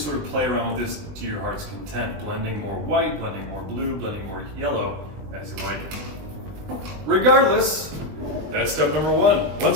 of play around with this to your heart's content, blending more white, blending more blue, blending more yellow as you like it. Regardless, that's step number one.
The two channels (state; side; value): late; left; 21 ms